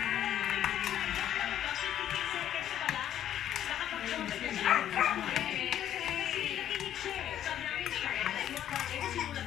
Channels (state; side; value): quieter; right; 10.9 dB